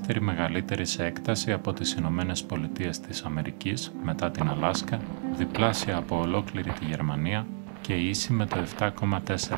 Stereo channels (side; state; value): left; silent; digital silence